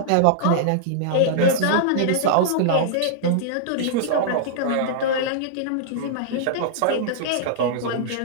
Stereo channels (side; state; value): both; different; correlation -0.02